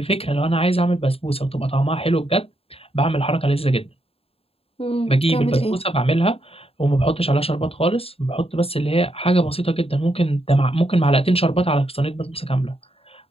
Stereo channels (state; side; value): late; right; 0.28 ms